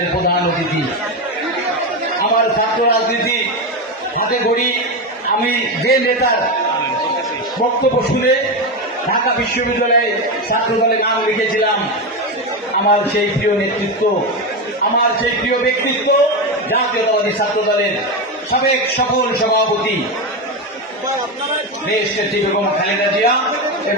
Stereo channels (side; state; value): both; normal; correlation 0.14